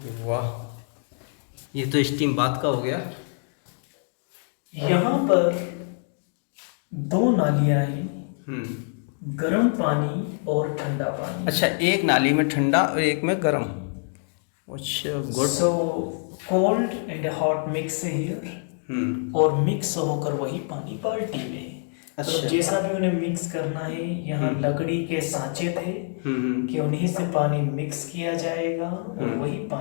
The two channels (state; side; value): silent; right; 57 dB below the other